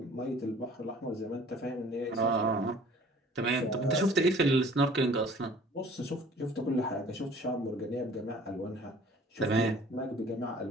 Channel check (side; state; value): both; normal; correlation 0.51